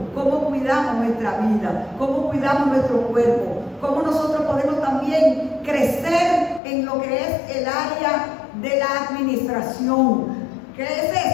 cómo cuidamos nuestra vida, cómo cuidamos nuestro cuerpo, cómo nosotros podemos también crecer en lo que es el área de la administración. ¿Qué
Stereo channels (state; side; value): drops out; right; at 6.6 s